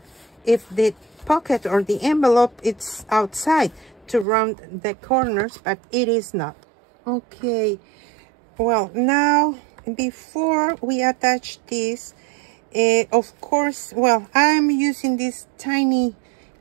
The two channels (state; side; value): drops out; left; at 4.2 s